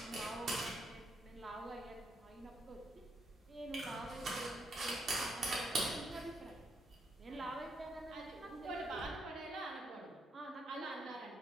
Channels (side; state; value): both; normal; correlation 0.77